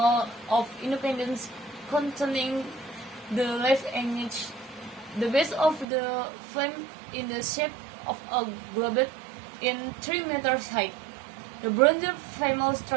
of independence containing the left image. The base of the flame in the shape of a globe in 3 meters high. The bronze female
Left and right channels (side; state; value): left; drops out; at 5.9 s